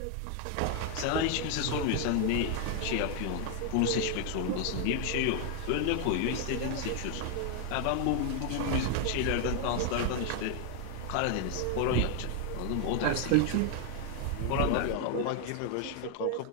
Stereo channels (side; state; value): both; different; correlation 0.00